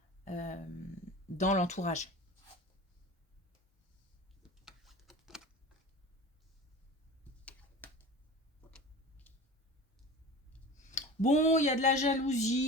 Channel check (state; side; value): normal; both; correlation 0.34